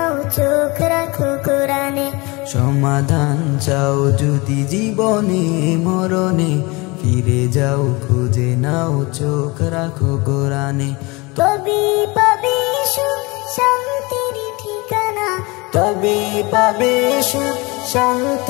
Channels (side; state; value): right; quieter; 25.3 dB